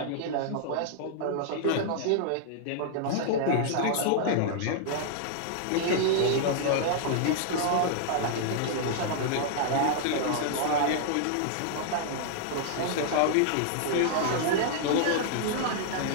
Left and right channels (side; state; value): both; different; correlation -0.01